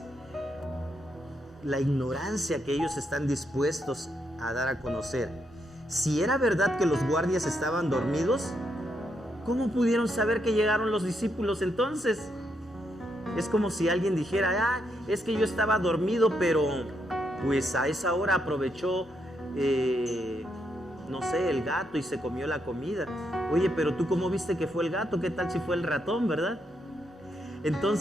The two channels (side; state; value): both; normal; correlation 0.79